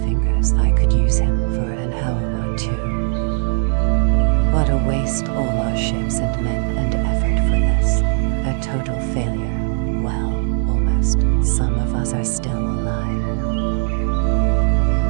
fingers, I could use him for an hour or two. What a waste, all our ships and men and effort for this. A total failure. Well, almost. Some of us are still alive.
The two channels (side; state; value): left; silent; 61 dB below the other